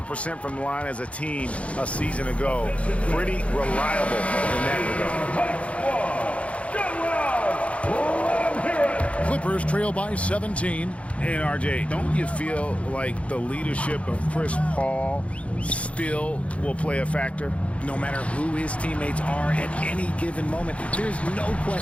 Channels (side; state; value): right; late; 0.063 ms